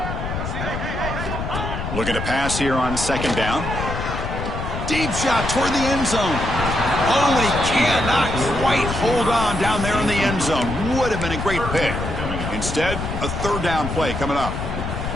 Looking to pass here on 2nd down. Deep shot toward the end zone. Oh, and he cannot quite hold on down there in the end zone. Would have been a great pick. Instead, a third down play coming up.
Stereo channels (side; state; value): left; noise; rumble, 5 dB below the sound